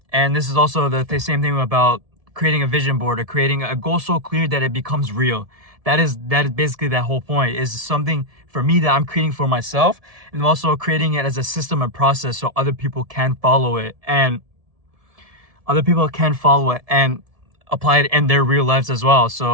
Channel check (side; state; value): left; late; 1.7 ms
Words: and this is also the same thing about creating a vision board or creating a goal so clear that it becomes real. That is basically that whole point, is something for me that I'm creating for myself, and also creating it as a system and process so other people can follow it and apply it in their real lives as well.